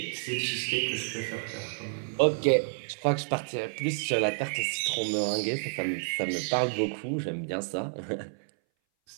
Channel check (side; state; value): left; silent; 58 dB below the other